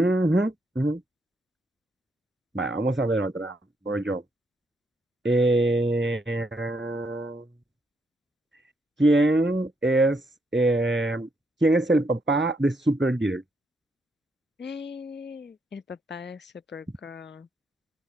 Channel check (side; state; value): both; normal; correlation 0.76